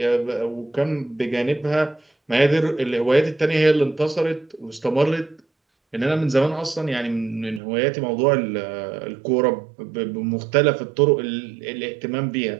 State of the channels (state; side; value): drops out; left; at 7.6 s